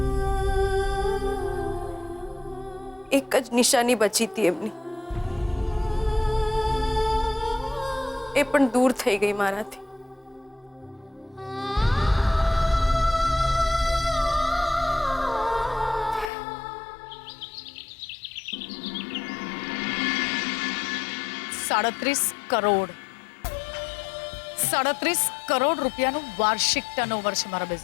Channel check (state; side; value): drops out; right; at 16.3 s